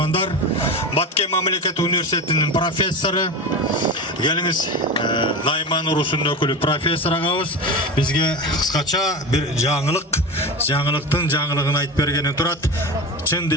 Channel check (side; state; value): both; normal; correlation 0.26